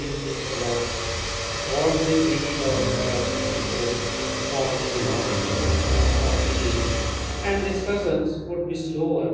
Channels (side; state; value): both; identical; correlation 1.00